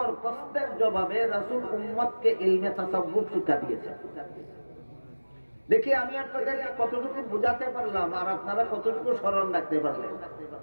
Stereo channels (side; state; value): both; inverted; correlation -1.00